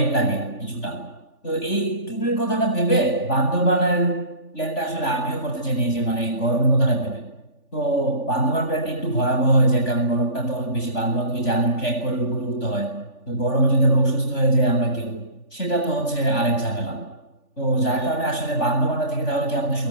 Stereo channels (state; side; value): late; right; 3.4 ms